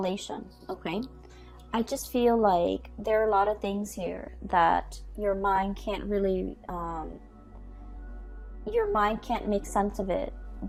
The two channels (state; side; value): identical; both; correlation 1.00